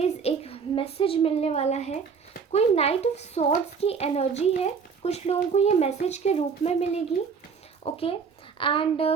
एक मैसेज मिलने वाला है। कोई नाइट ऑफ सॉर्ड्स की एनर्जी है, कुछ लोगों को ये मैसेज के रूप में मिलेगी। ओके, एंड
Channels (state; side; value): quieter; left; 5.9 dB